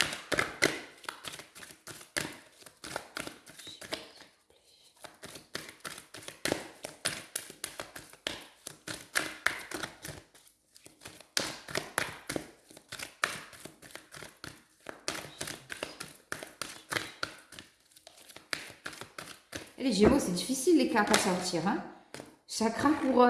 Les Gémeaux, c'est difficile les cartes à sortir. Hein. Chakra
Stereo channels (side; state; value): both; identical; correlation 1.00